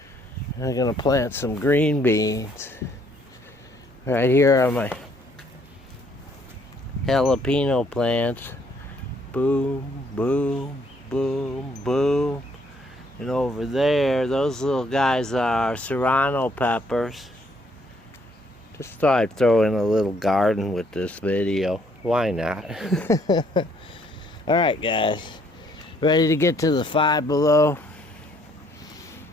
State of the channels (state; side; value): normal; both; correlation 0.66